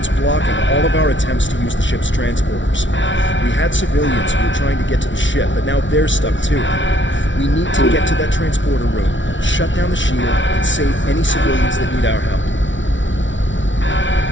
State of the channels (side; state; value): right; late; 0.55 ms